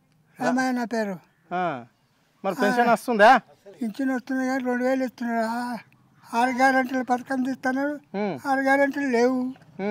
రామయ్య నా పేరు. మరి పెన్షన్ వస్తుందా? పింఛన్ వస్తుంది కానీ 2000 ఇస్తున్నాడు. 6 గ్యారెంటీల పథకం తీస్తున్నాడు. 6 గ్యారెంటీలు లేవు.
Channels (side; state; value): both; identical; correlation 1.00